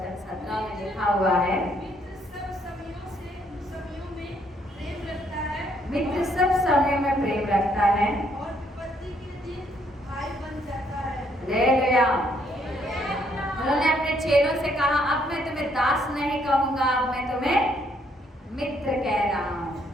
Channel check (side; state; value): both; normal; correlation 0.69